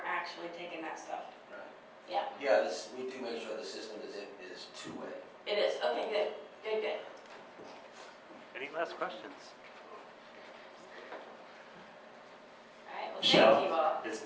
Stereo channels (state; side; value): identical; both; correlation 1.00